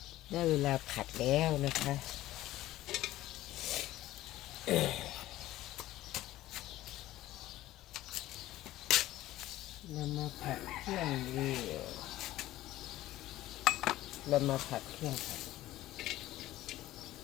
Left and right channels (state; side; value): quieter; right; 15.5 dB